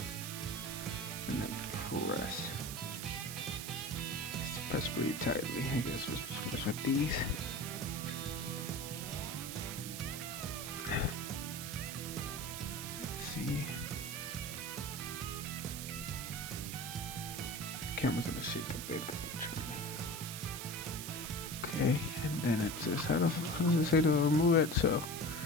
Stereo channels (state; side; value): noise; right; hiss, 7 dB below the sound